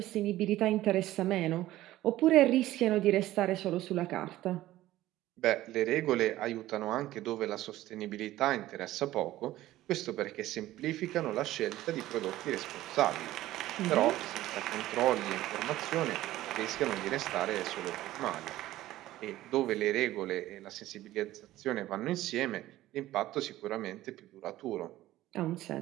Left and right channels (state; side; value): quieter; left; 15.4 dB